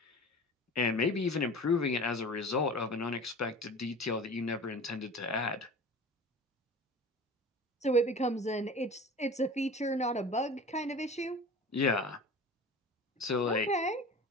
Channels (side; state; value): both; normal; correlation 0.39